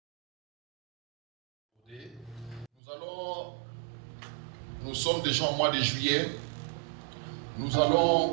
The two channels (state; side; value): drops out; left; at 2.7 s